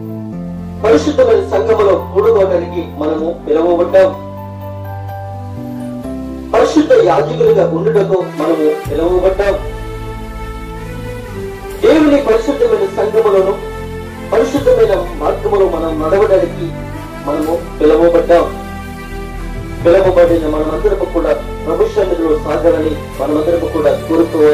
పరిశుద్ధమైన సంఘములో కూడుకోవడానికి మనము పిలువబడ్డాం. పరిశుద్ధ యాజకులుగా ఉండుటకు మనము పిలువబడ్డాం. దేవుని పరిశుద్ధమైన సంఘములను పరిశుద్ధమైన మార్గములో మనం నడవడానికి మనము పిలువబడ్డాం. పిలువబడిన మనమందరము కూడా ప్రభు సన్నిధిలో సాగాలని మనమందరము కూడా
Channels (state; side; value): identical; both; correlation 1.00